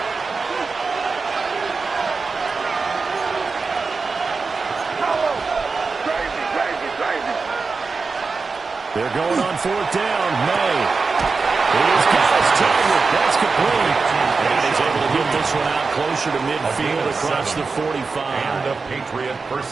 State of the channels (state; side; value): quieter; left; 4.5 dB